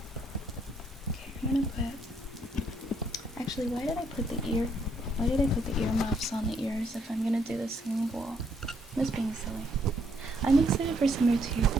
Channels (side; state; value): both; normal; correlation 0.71